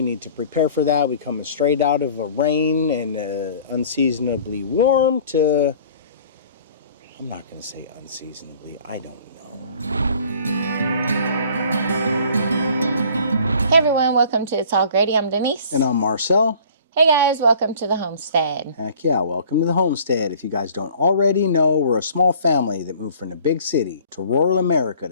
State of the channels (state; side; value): inverted; both; correlation -0.50